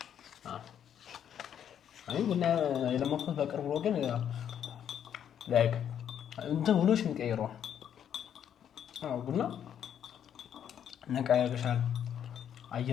አይ ቡና የለመድኩት በቅርቡ ነው፣ ግን ላይክ እንትን ውሎሽ የሚቀይረው ቡና ነቃ ያደርግሻል።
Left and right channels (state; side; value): quieter; right; 9.2 dB